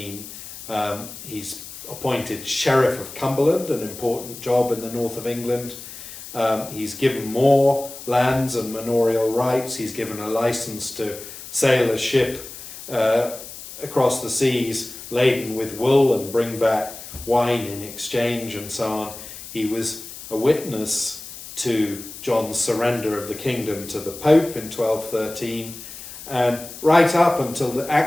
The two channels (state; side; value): noise; left; hiss, 13 dB below the sound